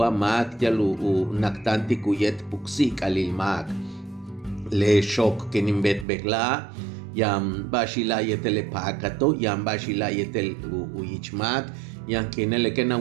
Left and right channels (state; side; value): drops out; left; at 6.1 s